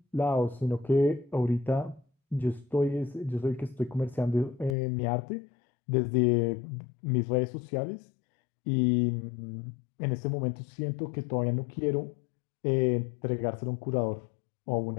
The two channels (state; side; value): drops out; right; at 4.8 s